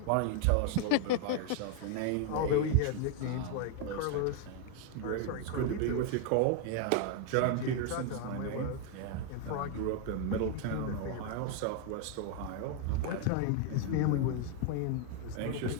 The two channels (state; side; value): different; both; correlation 0.00